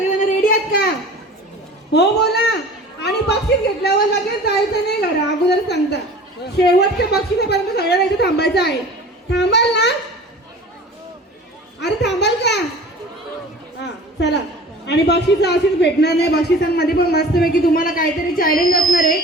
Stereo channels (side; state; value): both; normal; correlation 0.42